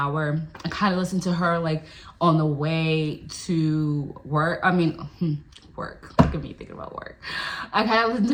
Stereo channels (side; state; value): both; identical; correlation 1.00